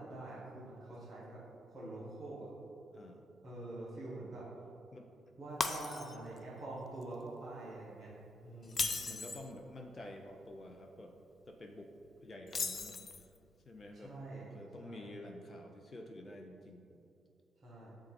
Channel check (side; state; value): both; normal; correlation 0.80